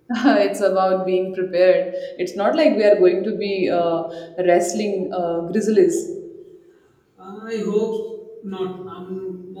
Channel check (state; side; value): identical; both; correlation 1.00